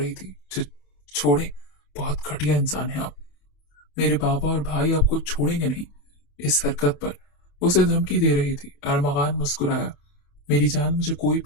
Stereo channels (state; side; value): late; right; 28 ms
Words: थी। छोड़े, बहुत घटिया इंसान है आप। मेरे बाबा और भाई आपको छोड़ेंगे नहीं। इस हरकत पर उसे धमकी दे रही थी। अरमगान मुस्कुराया। मेरी जान, मुझे कोई